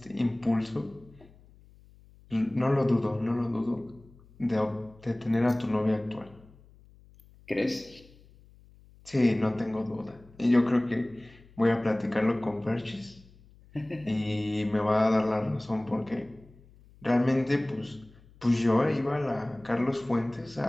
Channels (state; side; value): noise; left; hum, 26 dB below the sound